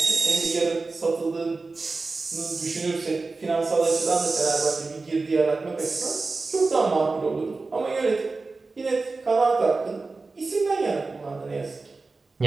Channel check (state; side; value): quieter; left; 3.8 dB